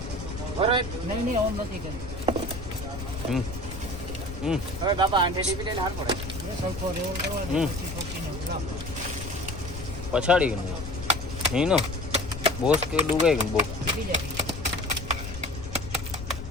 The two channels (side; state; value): left; noise; rumble, 10 dB below the sound